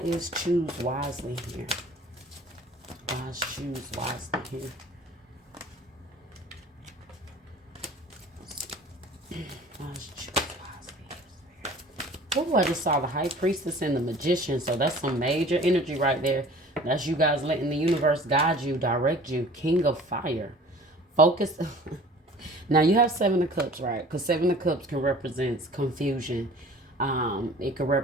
choose wisely here? Why is choose wisely here? Why is choose wisely here? Oh, I just saw the High Priestess and the Magician. So that's some major energy right there. That's you guys letting the universe guide you, direct you. King of Fire. Focus. Now you have Seven of Cups, right? Because Seven of Cups can represent confusion. It could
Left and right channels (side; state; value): both; normal; correlation 0.47